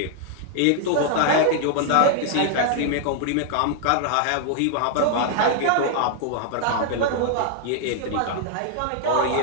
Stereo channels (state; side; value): different; both; correlation 0.00